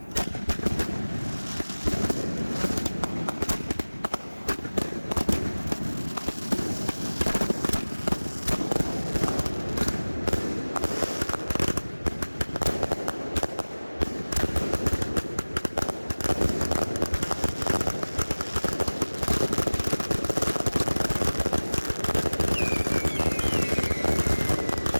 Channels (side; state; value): both; inverted; correlation -1.00